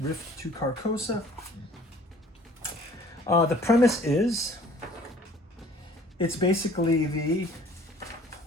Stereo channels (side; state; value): both; normal; correlation 0.53